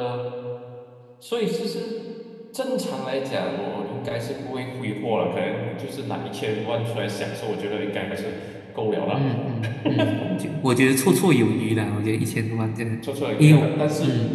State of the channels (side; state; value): both; identical; correlation 1.00